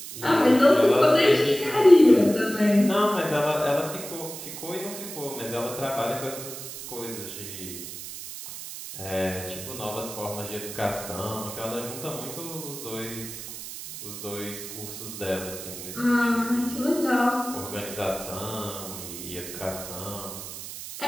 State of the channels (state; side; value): noise; right; hiss, 10 dB below the sound